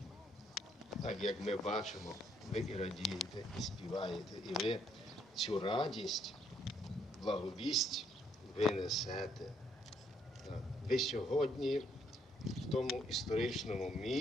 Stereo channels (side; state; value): both; normal; correlation 0.70